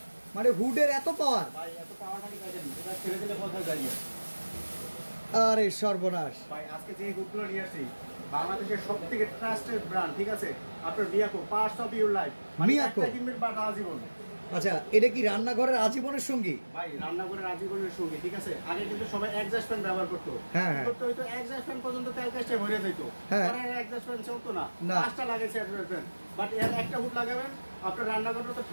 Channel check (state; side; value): inverted; both; correlation -1.00